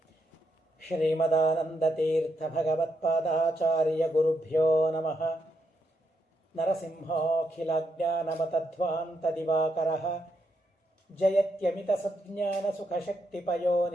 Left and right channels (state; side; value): normal; both; correlation 0.80